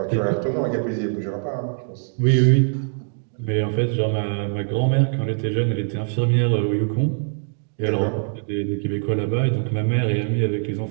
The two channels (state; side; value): silent; left; 62 dB below the other